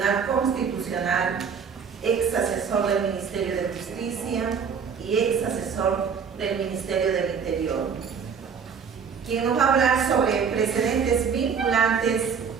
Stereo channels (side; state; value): left; quieter; 6.4 dB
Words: Constitucional, ex asesor del Ministerio de Justicia y ex asesor del Ministerio del Interior, quien nos va a hablar sobre precedentes vinculantes